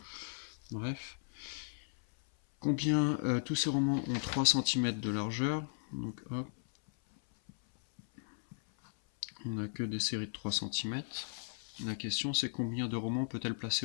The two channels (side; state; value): right; silent; 54 dB below the other